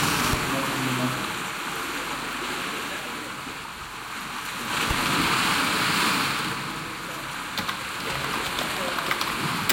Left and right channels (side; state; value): both; identical; correlation 1.00